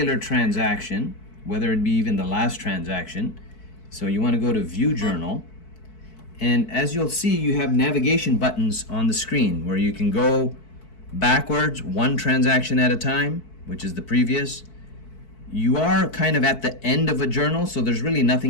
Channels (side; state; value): right; late; 4.6 ms